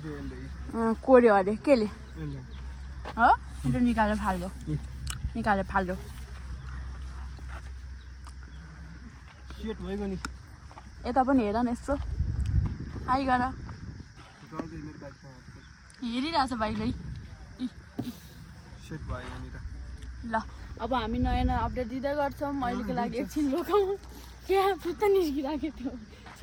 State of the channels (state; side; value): identical; both; correlation 1.00